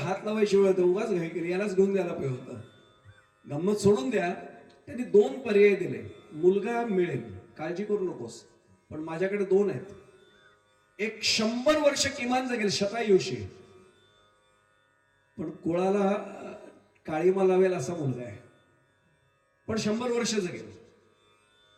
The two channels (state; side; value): identical; both; correlation 1.00